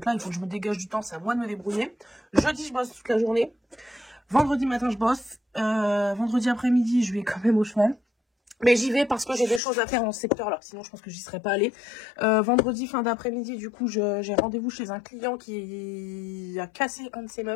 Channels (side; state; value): right; drops out; at 9.6 s